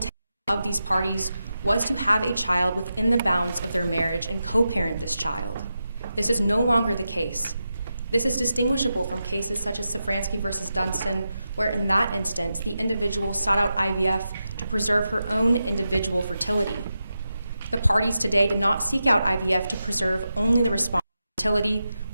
of these parties was to have a child within the bounds of their marriage and co-parent this child. This is no longer the case. This is distinguishable from cases such as Safransky versus Dunstan, where in that instance, the individual sought out IVF to preserve her own individual fertility. The parties today did not seek out IVF to preserve only the respondent's fertility,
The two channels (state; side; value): inverted; both; correlation -0.89